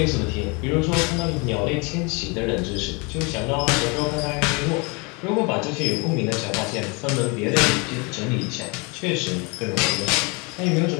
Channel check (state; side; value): quieter; right; 29.8 dB